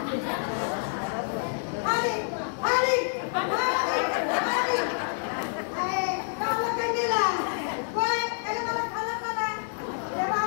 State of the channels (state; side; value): silent; right; 59 dB below the other